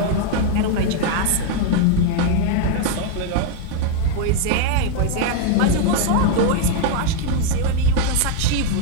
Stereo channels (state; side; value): different; both; correlation 0.01